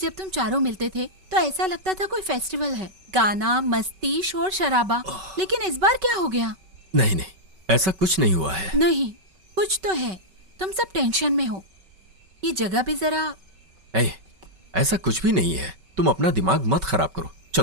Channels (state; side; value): late; left; 5.3 ms